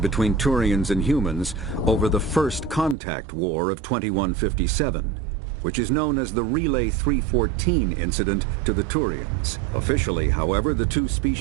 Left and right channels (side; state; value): left; drops out; at 3.0 s